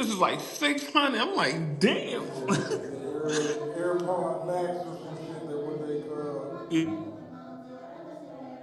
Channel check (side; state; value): both; identical; correlation 1.00